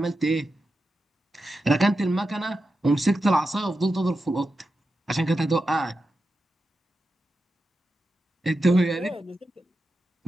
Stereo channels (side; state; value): both; normal; correlation 0.90